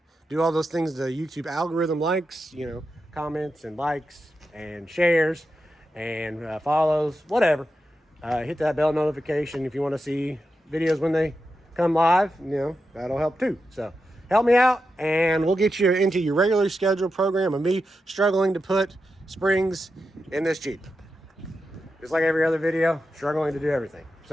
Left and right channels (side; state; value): both; normal; correlation 0.89